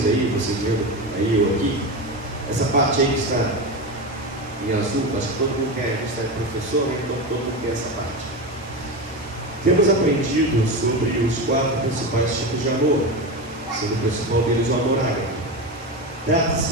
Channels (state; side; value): normal; both; correlation 0.19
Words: aí, vocês vendo aí ou aqui, essa parte aí que está em azul. Acho que todo mundo quer, a gente está professor, né? Então todo mundo quer essa parte. Temos aprendido sobre os 4 principais tipos de amor, sendo o principal deles o amor ágape.